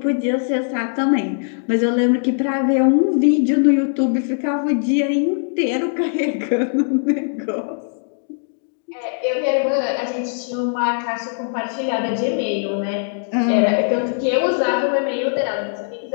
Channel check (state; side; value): silent; right; digital silence